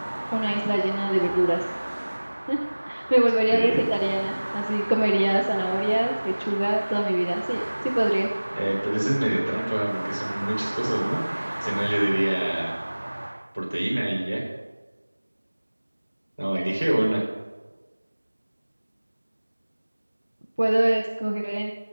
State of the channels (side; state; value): both; inverted; correlation -1.00